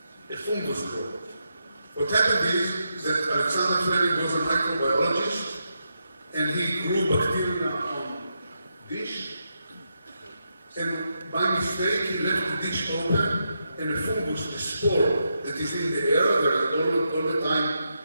a fungus grow. What happened is that Alexander Fleming was a microbiologist, and he grew bacteria on dish, and by mistake he left the dish open, and a fungus, a spore that is in the air, there is all the time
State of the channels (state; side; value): inverted; both; correlation -0.84